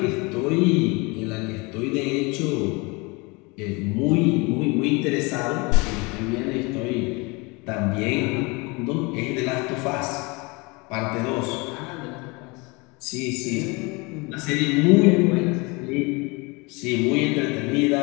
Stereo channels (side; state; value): right; quieter; 27.0 dB